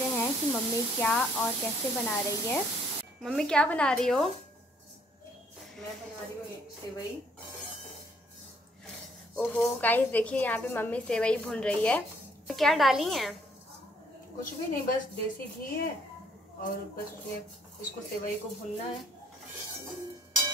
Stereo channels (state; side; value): normal; both; correlation 0.65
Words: हैं कि मम्मी क्या और कैसे बना रही है। मम्मी क्या बना रही हो? मैं बना रही हूँ सेवई। ओहो गाइस देखिए यहाँ पे मम्मी सेवई भून रही है। क्या डाली हैं? कुछ भी नहीं, बस देसी घी है और बस उसमें इसको सेवई को भूनना है